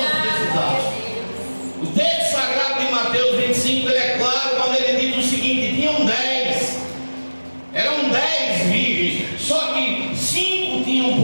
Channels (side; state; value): both; inverted; correlation -1.00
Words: precisar. O texto sagrado de Mateus 25, ele é claro quando ele diz o seguinte: tinham 10, eram 10 virgens, só que 5 tinham